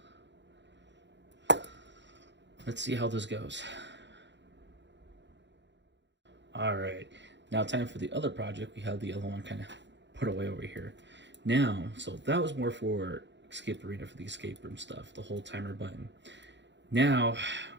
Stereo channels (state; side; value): late; left; 0.52 ms